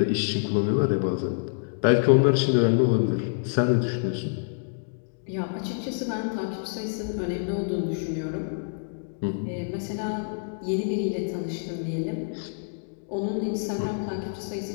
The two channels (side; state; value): right; silent; digital silence